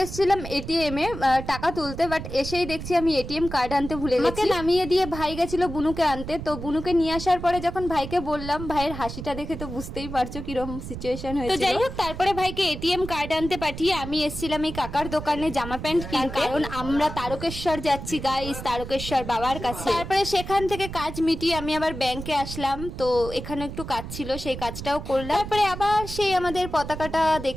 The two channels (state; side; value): noise; right; rumble, 9 dB below the sound